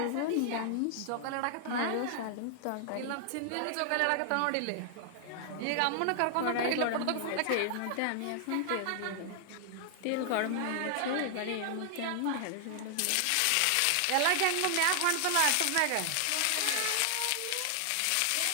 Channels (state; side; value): different; both; correlation 0.00